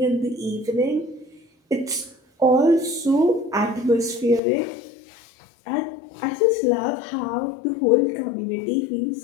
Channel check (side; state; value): right; drops out; at 4.4 s